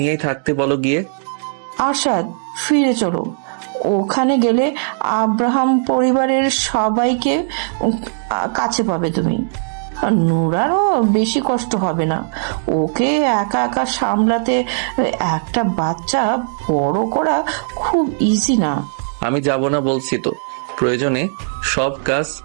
নিয়েই থাকতে বলো গিয়ে। আরশাদ, ফিরে চলো। ওখানে গেলে আব্রাহাম পরিবারের সবাইকে কাছে পাবে তুমি। নুরারও বেশি কষ্ট হবে না। ওকে একা একা সামলাতে একটা বাচ্চা বড় করা খুব ইজি না। আমি যাব না বলছি তো। প্রয়োজনে সব কাজ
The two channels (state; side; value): silent; left; digital silence